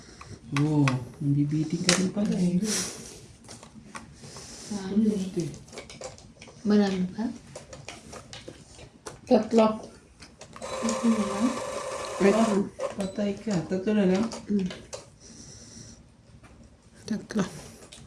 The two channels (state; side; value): identical; both; correlation 1.00